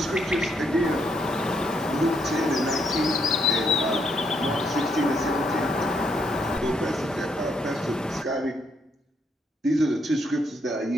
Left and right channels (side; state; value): both; normal; correlation 0.74